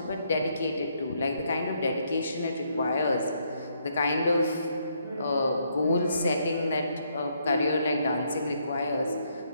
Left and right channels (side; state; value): both; inverted; correlation -0.73